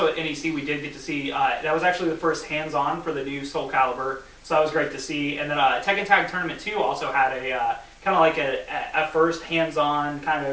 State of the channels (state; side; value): identical; both; correlation 1.00